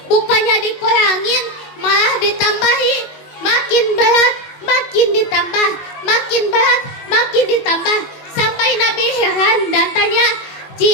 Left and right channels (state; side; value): late; right; 21 ms